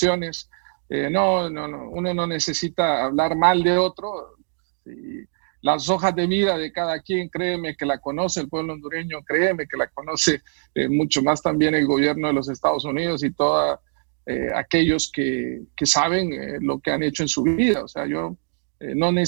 No, uno no necesita hablar mal de otro. Y las hojas de vida de cada quien, créeme que la conoce el pueblo hondureño, créeme que la conoce mucho más también el gobierno de los Estados Unidos y todos aquellos que saben lo que han hecho en su vida. O sea, yo no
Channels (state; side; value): silent; left; digital silence